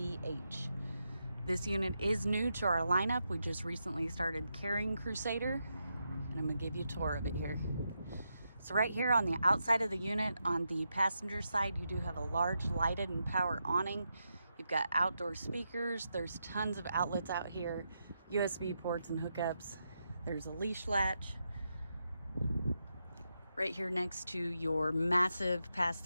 This unit is new to our lineup. We just recently started carrying Crusader, and I'm going to give you a tour of it here. So right here on the outside of the unit, on the passenger side, you do have a large lighted and power awning. You've got outdoor speakers. There's tons of outlets out here, USB ports and hookups. There's a leash latch right here next to your massive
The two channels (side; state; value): both; inverted; correlation -0.85